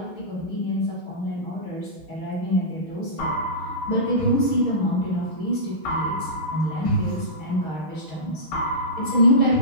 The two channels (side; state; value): right; late; 6.4 ms